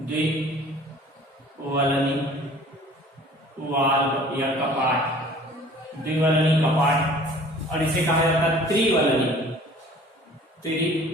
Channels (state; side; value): normal; both; correlation 0.49